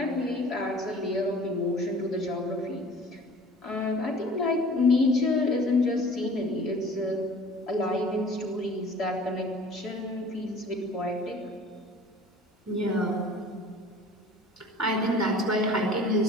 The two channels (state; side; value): normal; both; correlation 0.46